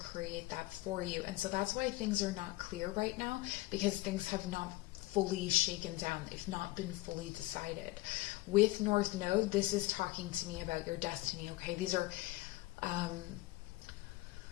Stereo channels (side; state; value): right; quieter; 18.7 dB